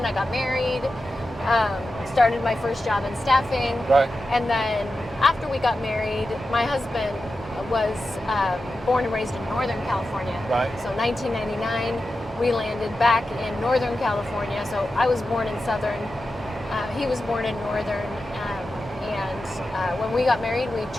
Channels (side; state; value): both; normal; correlation 0.91